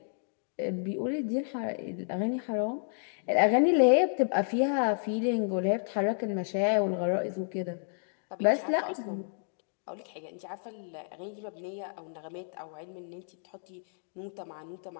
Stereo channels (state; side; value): silent; right; digital silence